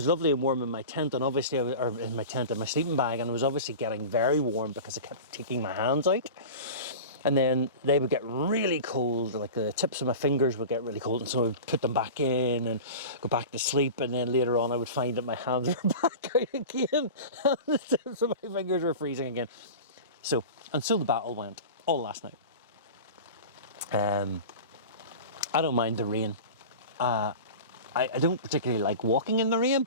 lovely and warm in my tent, and obviously, in my sleeping bag, and I was obviously getting very warm because I kept taking my hands out. And then they would get really cold, like the tips of my fingers would get really cold, and so I would put them back in and go back to sleep, and then later on I would find that my hands were back out again, and the tips of my fingers were freezing again. So the battle went all last night. I don't mind the rain. I don't particularly like walking in the rain,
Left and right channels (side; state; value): both; inverted; correlation -0.33